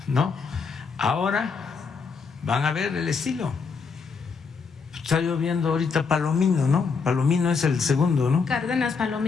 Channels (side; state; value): right; quieter; 5.2 dB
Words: ¿no? Ahora van a ver el estilo. Está lloviendo ahorita Palomino, ¿no? Palomino es el segundo, ¿no? Cárdenas